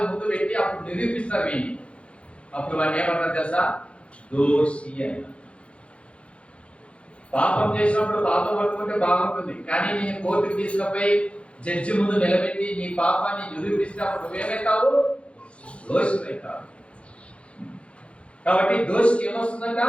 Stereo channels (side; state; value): right; late; 0.060 ms